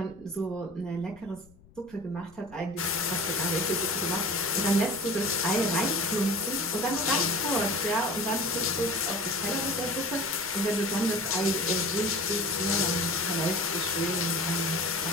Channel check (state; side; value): noise; left; rumble, 25 dB below the sound